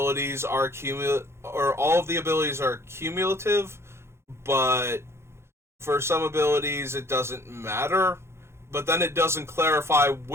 are or all of the abilities are cumulative, but for some abilities it doesn't matter. But then it doesn't clarify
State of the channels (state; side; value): late; left; 0.13 ms